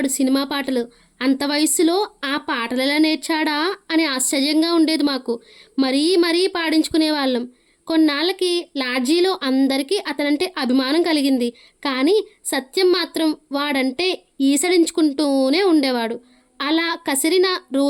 సినిమా పాటలు. అంత వయస్సులో ఆ పాటలెలా నేర్చాడా అని ఆశ్చర్యంగా ఉండేది మాకు. మరీ పాడించుకునేవాళ్ళం. కొన్నాళ్ళకి లాడ్జీలో అందరికీ అతనంటే అభిమానం కలిగింది. కానీ సత్యం మాత్రం వాడంటే ఈసడించుకుంటూనే ఉండేవాడు. అలా కసిరిన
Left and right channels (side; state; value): both; identical; correlation 1.00